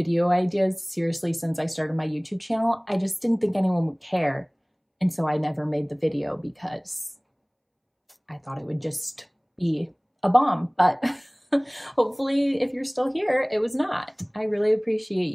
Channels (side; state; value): both; identical; correlation 1.00